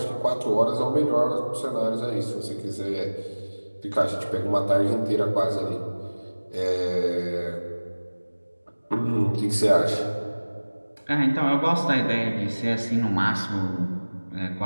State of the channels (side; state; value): both; inverted; correlation -1.00